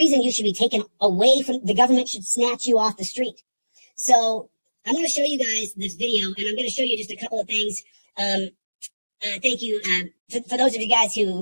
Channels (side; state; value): both; inverted; correlation -1.00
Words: you should be taken away from the government. Should snatch you off the street. So I want to show you guys this video, and I'm going to show you just a couple of things. Thank you for those of you guys